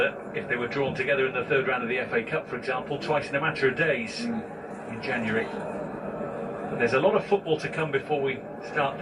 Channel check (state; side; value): identical; both; correlation 1.00